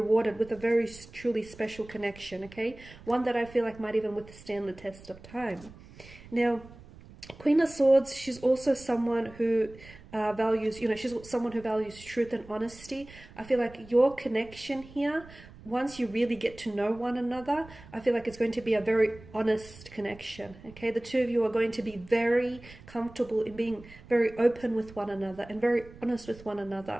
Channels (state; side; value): noise; right; rumble, 20 dB below the sound